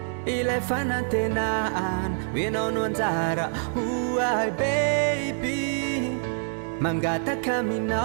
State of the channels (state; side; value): silent; left; digital silence